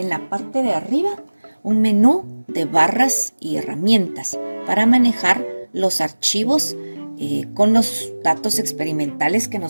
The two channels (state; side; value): inverted; both; correlation -1.00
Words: la parte de arriba un menú de barras y herramientas para manejar los archivos con los datos experimentales que